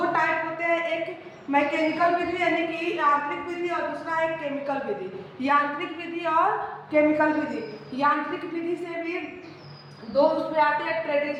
टाइप होते हैं, एक मैकेनिकल विधि यानी कि यांत्रिक विधि और दूसरा है केमिकल विधि। यांत्रिक विधि और केमिकल विधि। यांत्रिक विधि से भी दो उसमें आते हैं,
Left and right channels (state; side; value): identical; both; correlation 1.00